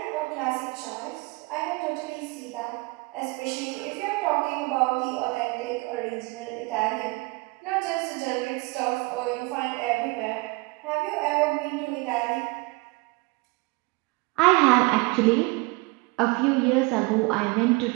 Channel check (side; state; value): left; quieter; 25.8 dB